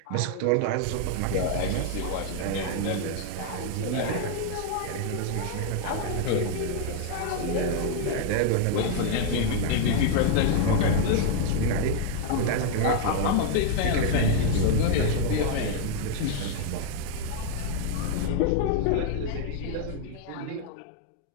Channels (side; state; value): both; different; correlation 0.00